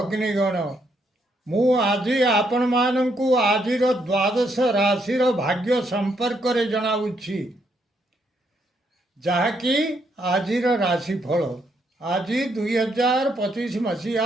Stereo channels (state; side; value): normal; both; correlation 0.75